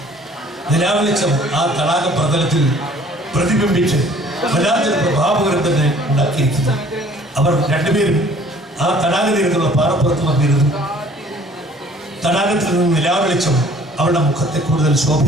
നിലാവെളിച്ചം ആ തടാക പ്രതലത്തിൽ പ്രതിബിംബിച്ച് വല്ലാത്തൊരു പ്രഭാവകരം തന്നെ ഉണ്ടാക്കിയിരിക്കുന്നു. അവർ രണ്ടുപേരും ആ തടാക തീരത്തുള്ള പാറപ്പുറത്ത് വന്നിരുന്നു. തടാകത്തിൽ നിന്ന് നിലാവെളിച്ചം അവളുടെ മുഖത്തെ കൂടുതൽ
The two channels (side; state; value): both; normal; correlation 0.54